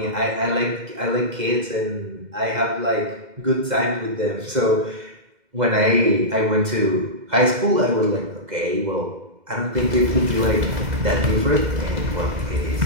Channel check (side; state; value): left; late; 2.1 ms